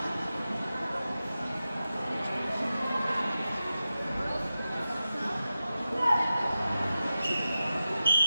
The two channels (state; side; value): inverted; both; correlation -0.92